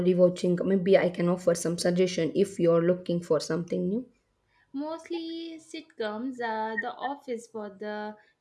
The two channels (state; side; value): identical; both; correlation 1.00